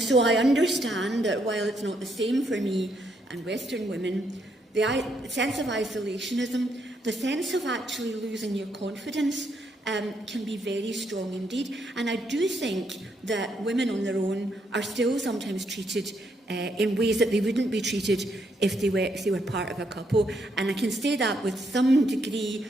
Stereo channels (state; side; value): normal; both; correlation 0.75